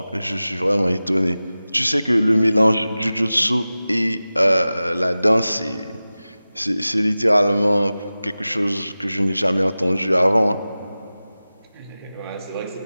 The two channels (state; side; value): inverted; both; correlation -0.96